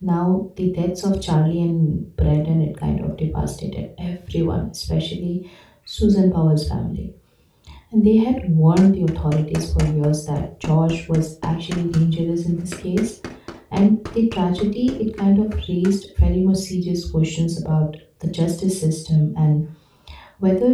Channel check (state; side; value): identical; both; correlation 1.00